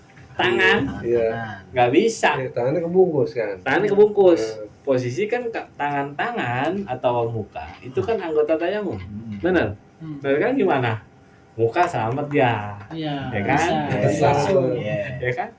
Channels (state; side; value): identical; both; correlation 1.00